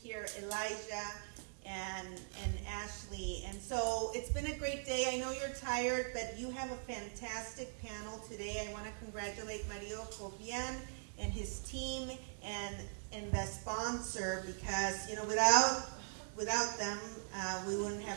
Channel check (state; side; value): silent; left; 50 dB below the other